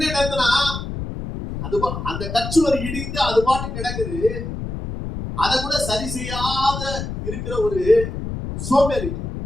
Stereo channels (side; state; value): left; noise; rumble, 6 dB below the sound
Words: என்னன்னா, அது அந்த கச்சுவர் இடிந்து அது பாட்டு கிடக்குது, அதை கூட சரி செய்யாத இருக்கிற ஒரு சோம்பேறி.